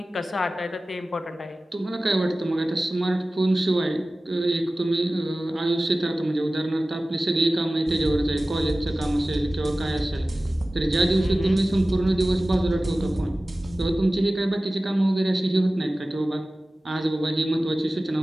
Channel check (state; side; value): normal; both; correlation 0.97